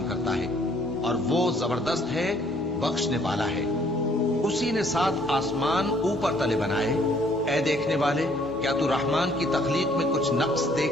کرتا ہے، اور وہ زبردست ہے، بخشنے والا ہے۔ اسی نے 7 آسمان اوپر تلے بنائے۔ اے دیکھنے والے، کیا تو رحمان کی تخلیق میں کچھ نقص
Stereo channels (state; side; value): normal; both; correlation 0.62